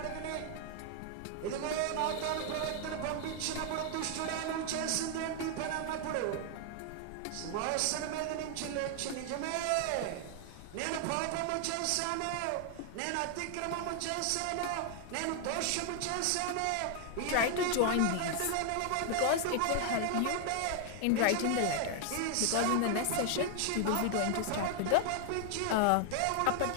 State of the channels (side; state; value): both; different; correlation 0.00